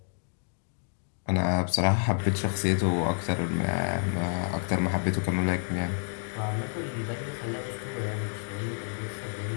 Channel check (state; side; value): silent; right; 57 dB below the other